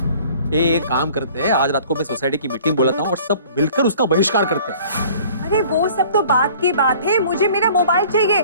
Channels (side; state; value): both; inverted; correlation -0.50